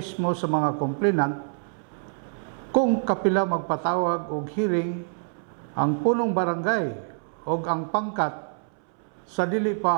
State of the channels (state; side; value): silent; left; 61 dB below the other